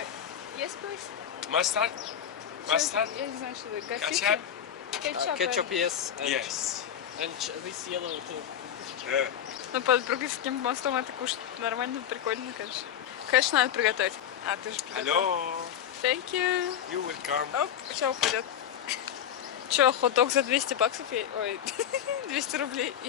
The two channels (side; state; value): right; quieter; 9.6 dB